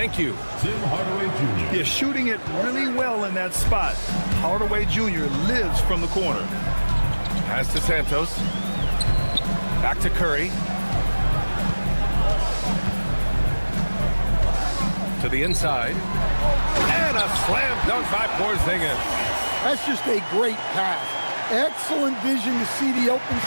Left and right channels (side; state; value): both; inverted; correlation -1.00